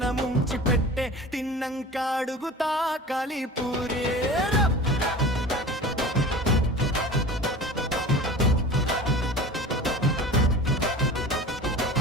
ముంచి పెట్టే తిన్నంక అడుగుతా కలిపూరి.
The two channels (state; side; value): normal; both; correlation 0.37